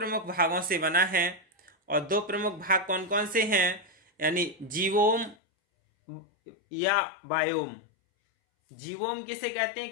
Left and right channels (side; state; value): right; drops out; at 5.4 s